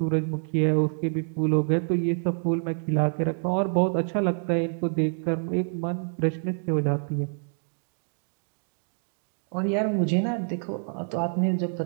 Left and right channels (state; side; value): silent; left; 60 dB below the other